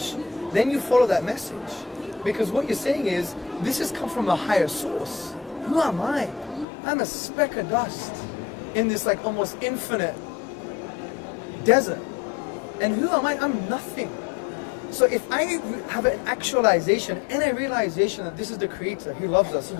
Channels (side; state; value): right; drops out; at 6.7 s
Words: then you follow that message. Because what you're saying is, this has come from a higher source. Who am I? I'm a speck of dust in this like almost infinite desert. And who am I? I'm nothing. So if I have an actualization and a realization that this is the Creator, He loves us, He